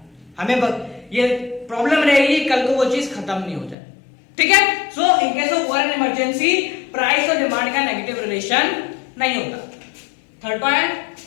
हमें ये प्रॉब्लम रहेगी कल को वो चीज खत्म नहीं हो जाए, ठीक है। So in case of war and emergency price और डिमांड का नेगेटिव रिलेशन नहीं होता। थर्ड पॉइंट,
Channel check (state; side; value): drops out; right; at 3.8 s